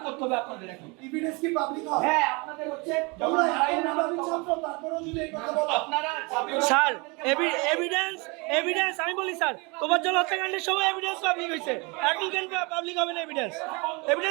করতে হবে আপনাদের। এখন এভিডেন্স কি পাবলিক হয়? হ্যাঁ আপনাদের হচ্ছে তোমরা এত ছাত্র তারপরেও যদি এই কথা বলো, আপনারা স্যার এভিডেন্স আমি বলি স্যার, তোফাজ্জল হত্যাকাণ্ডের সময় এভিডেন্স পাবলিক হয়েছে, এখন কেন পাবলিক হবে না?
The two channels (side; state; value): left; quieter; 28.6 dB